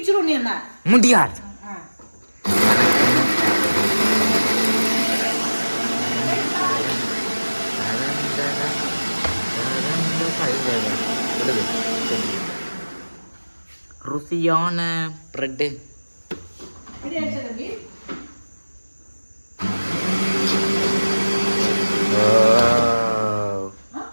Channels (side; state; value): both; inverted; correlation -1.00